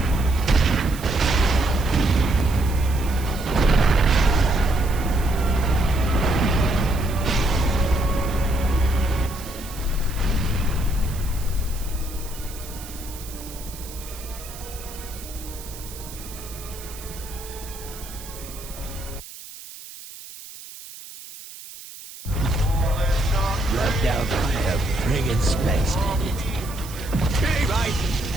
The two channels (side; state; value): right; noise; hiss, 15 dB below the sound